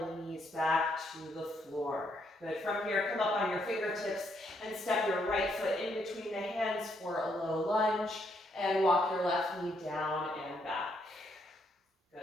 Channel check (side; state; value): both; normal; correlation 0.74